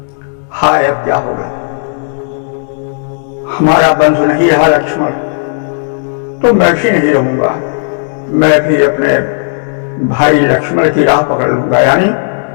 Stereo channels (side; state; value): right; silent; digital silence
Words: हाय अब क्या होगा, हमारा बंधु नहीं रहा लक्ष्मण, तो मैं भी नहीं रहूंगा, मैं भी अपने भाई लक्ष्मण की राह पकड़ लूंगा, यानी